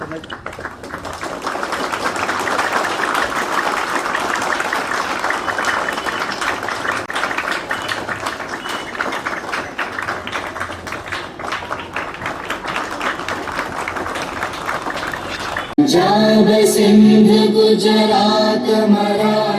पंजाब सिंध गुजरात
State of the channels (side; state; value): both; identical; correlation 1.00